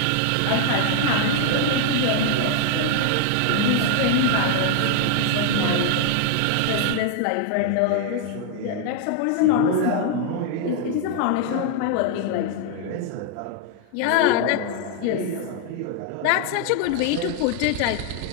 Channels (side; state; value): both; different; correlation 0.00